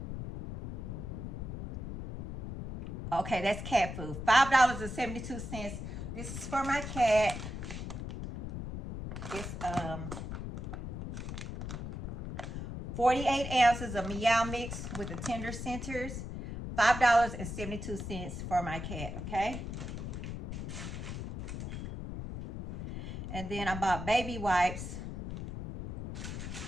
Okay, that's cat food. $5.72. This is for my cat. It's 48 ounces of Meow Mix with the tender centers. $5.72 for my cat, okay? And then I bought baby wipes.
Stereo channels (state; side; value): noise; left; rumble, 6 dB below the sound